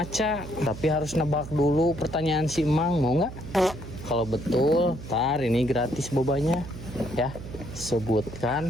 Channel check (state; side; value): noise; right; hum, 11 dB below the sound